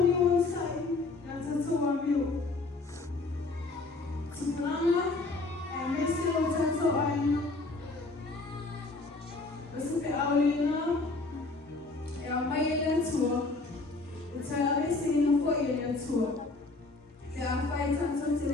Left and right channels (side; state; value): right; quieter; 3.4 dB